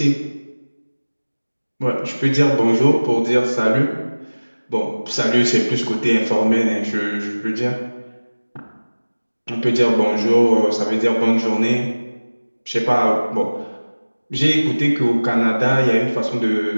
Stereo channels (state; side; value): inverted; both; correlation -1.00